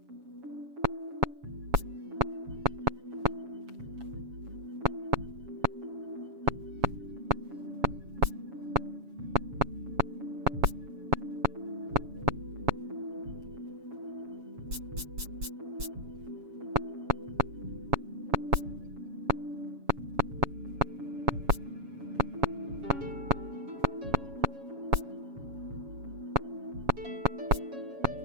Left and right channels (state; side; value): late; left; 7.2 ms